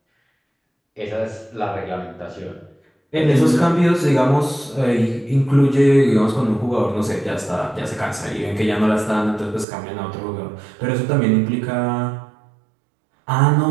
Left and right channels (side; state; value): left; drops out; at 9.7 s